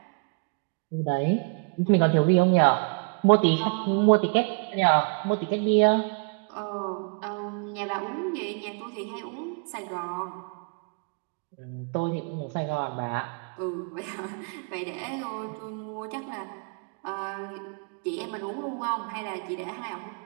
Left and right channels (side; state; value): left; quieter; 35.3 dB